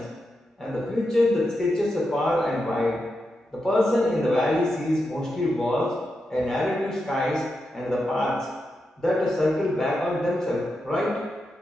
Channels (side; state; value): both; normal; correlation 0.87